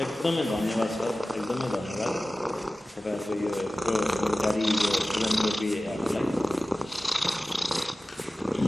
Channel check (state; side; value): normal; both; correlation 0.96